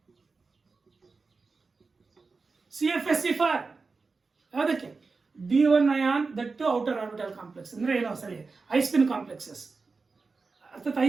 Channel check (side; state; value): left; quieter; 4.3 dB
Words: ಫಾರ್ ಯಾವುದಕ್ಕೆ? D1 ion that outer orbital complex. ಅಂದ್ರೆ ಏನೋ ಸರಿ, ಐಸ್ಪಿನ್ ಕಾಂಪ್ಲೆಕ್ಸಸ್. ಅರ್ಥಾತ್